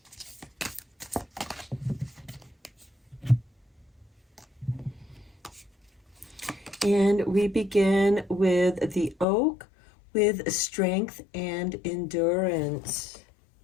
And we begin with the oak with strength and endurance.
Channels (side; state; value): right; drops out; at 9.2 s